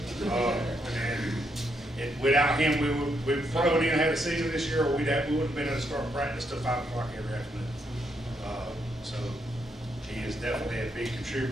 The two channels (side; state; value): both; normal; correlation 0.77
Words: And without him, we probably wouldn't even have a season this year, or we wouldn't have been able to start practice till 5 o'clock every afternoon. So he is definitely a big